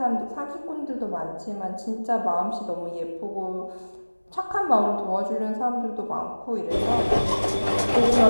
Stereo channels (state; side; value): inverted; both; correlation -1.00